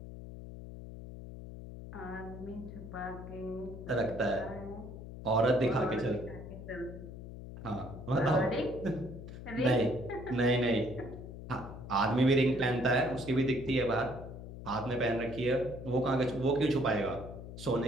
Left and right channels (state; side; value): noise; left; hum, 11 dB below the sound